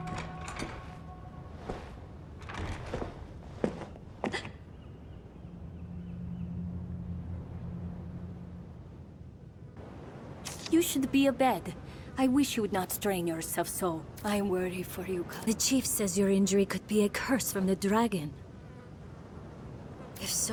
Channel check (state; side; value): identical; both; correlation 1.00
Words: You should be abed. I wish you would not strain yourself so. I worry for you, The chief says your injury could be a curse from the dragon. If